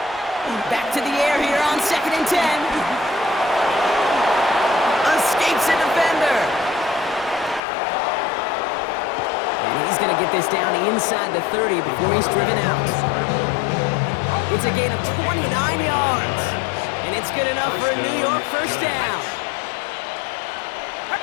Back to the air here on second and 10. Escapes a defender. this down inside the 30 before he's driven out. It's a gain of 29 yards. And it's good enough for a New York first down.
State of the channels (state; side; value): drops out; right; at 7.6 s